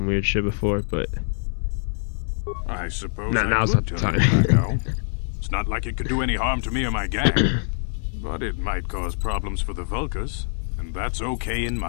weird shit before, but I suppose now's I not could the turn time. it back out. It's not like it could do any harm to me or my gang. But it might cause problems for the Vulkars, and that's okay in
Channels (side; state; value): right; silent; 62 dB below the other